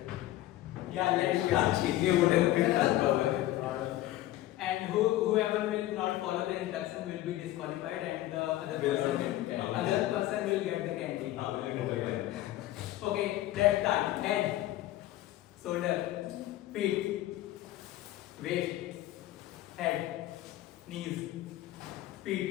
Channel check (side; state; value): right; quieter; 15.1 dB